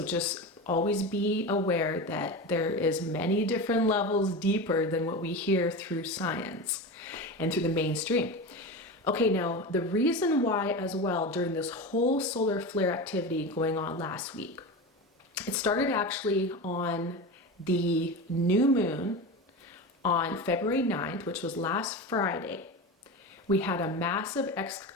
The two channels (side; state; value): both; normal; correlation 0.25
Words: just always be aware that there is many different levels deeper than what we hear through science and through the mainstream. Okay, now the reason why as well during this whole solar flare activity going on last week, it started actually on the new moon on February 9th, which was last Friday. We had a massive